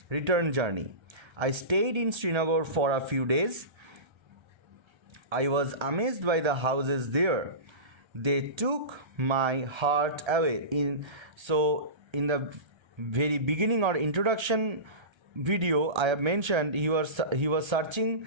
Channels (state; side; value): late; left; 1.3 ms